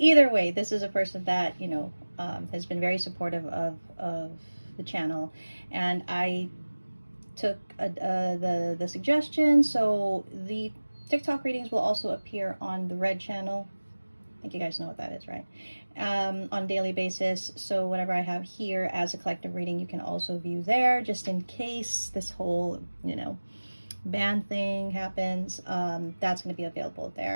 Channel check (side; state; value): both; inverted; correlation -1.00